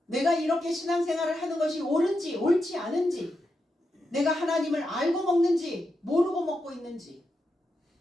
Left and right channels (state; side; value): normal; both; correlation 0.86